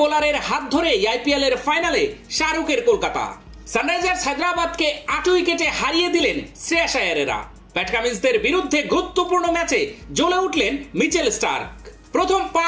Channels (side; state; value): both; identical; correlation 1.00